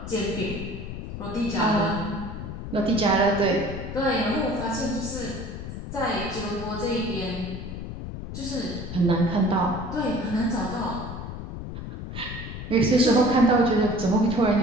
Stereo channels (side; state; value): left; noise; rumble, 8 dB below the sound